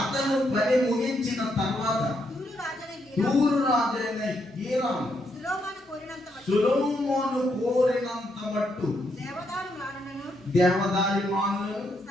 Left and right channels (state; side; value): normal; both; correlation 0.78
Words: పని ముగించిన తర్వాత తూరు రాజైన హీరాము సొలొమోను కోరినంత మట్టు దేవదారి మానులను,